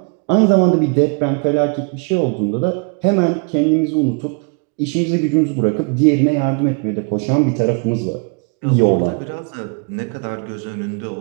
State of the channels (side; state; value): left; quieter; 34.5 dB